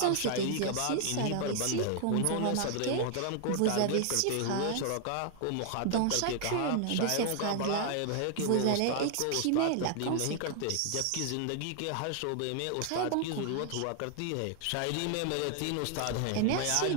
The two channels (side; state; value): both; different; correlation 0.00